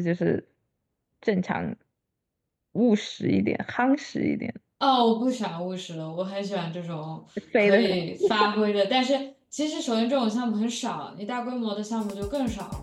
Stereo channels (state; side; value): identical; both; correlation 1.00